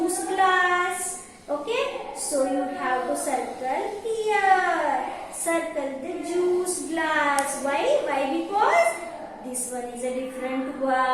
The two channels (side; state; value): both; identical; correlation 1.00